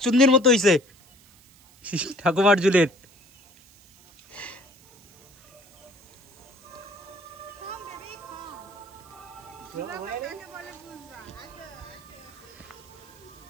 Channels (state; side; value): noise; right; hiss, 27 dB below the sound